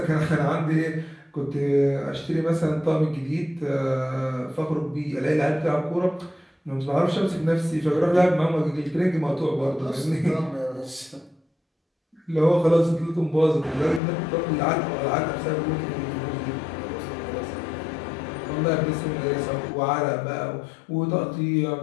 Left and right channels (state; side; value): drops out; right; at 14.0 s